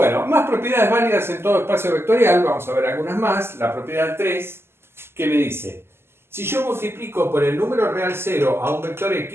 más propiedades válidas en todo espacio vectorial, vamos a ver algunas más. La propiedad 3, que me dice, si yo multiplico por el número real 0 a un vector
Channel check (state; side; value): late; left; 0.12 ms